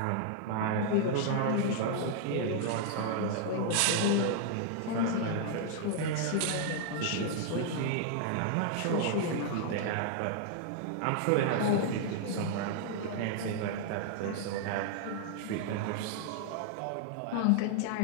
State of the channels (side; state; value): both; different; correlation -0.01